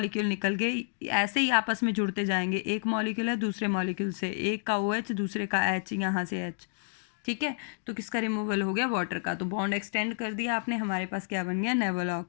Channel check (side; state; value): right; silent; digital silence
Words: निकल गए, ऐसे ही आपस में जुड़ते जाएंगे। एक मॉलिक्यूल है दूसरे मॉलिक्यूल से, एक का OH दूसरे का H, यहाँ से H, ठीक है। तो किसका रिमूवल हो गया, वाटर का। तो बॉन्ड एक्सटेंड कर दिया आपने, हमारे पास क्या बन गया,